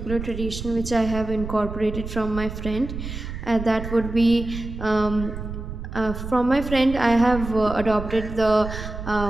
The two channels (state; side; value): noise; right; rumble, 8 dB below the sound